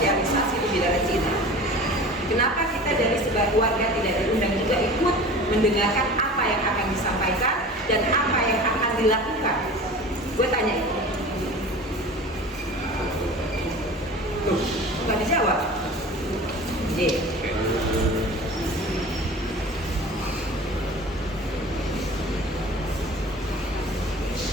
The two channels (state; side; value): normal; both; correlation 0.38